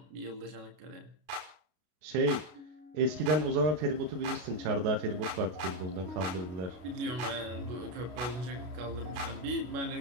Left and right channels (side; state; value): left; late; 32 ms